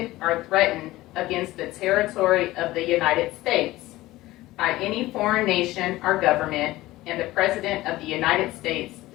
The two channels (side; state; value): right; quieter; 17.6 dB